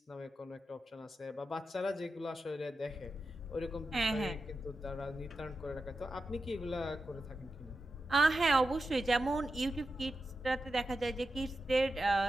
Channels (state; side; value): normal; both; correlation 0.90